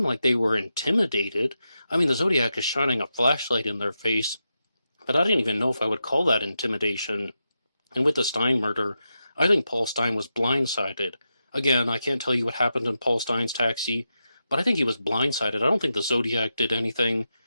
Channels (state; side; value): inverted; both; correlation -0.88